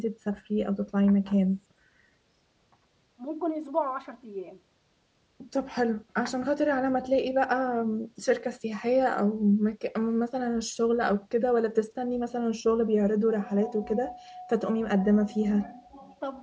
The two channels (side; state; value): both; identical; correlation 1.00